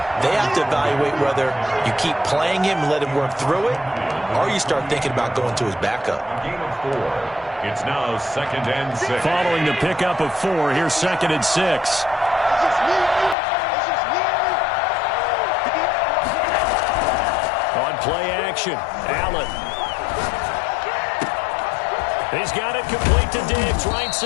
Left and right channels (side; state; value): right; drops out; at 13.4 s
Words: they have to evaluate whether you keep playing him and let him work through it, or you start thinking about going to his backup. Gain of 4. It's now 2nd and 6. Following the pickup of 4, here's 2nd and 6. On play action, Allen. He's got it complete to Diggs, right